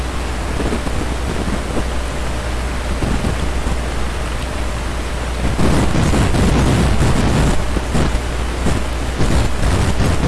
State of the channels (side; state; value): both; identical; correlation 1.00